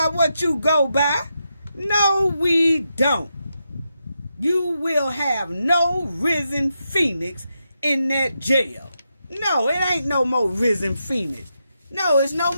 what you go by. No, we don't. You will have no Risen Phoenix in that jail. No, it ain't no more Risen Phoenix. No, it's no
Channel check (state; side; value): inverted; both; correlation -0.85